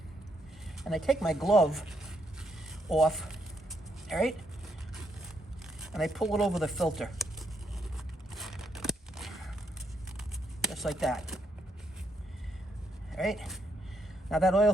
and I take my glove off, all right? And I pull it over the filter. Just like that. All right? Now that oil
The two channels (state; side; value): normal; both; correlation 0.76